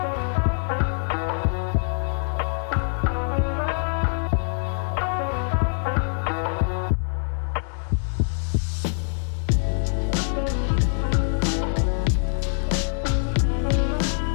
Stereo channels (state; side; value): silent; right; 62 dB below the other